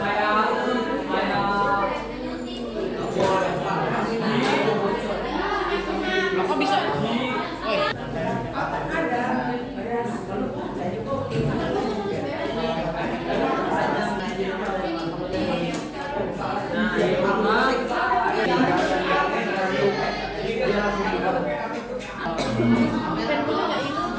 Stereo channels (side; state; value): both; identical; correlation 1.00